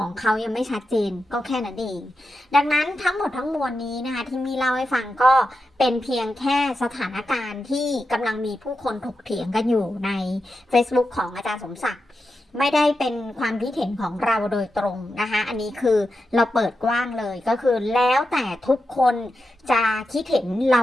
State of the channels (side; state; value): both; normal; correlation 0.89